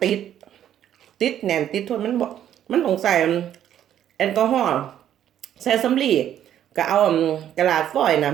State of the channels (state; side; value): quieter; left; 10.7 dB